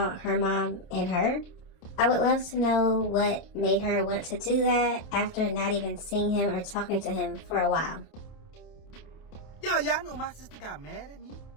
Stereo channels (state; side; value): late; right; 28 ms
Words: her mom, and her. I would love to know what made her want to do that after not even seeing him or talking to him for a while. Yo, y'all know my sister got mad at me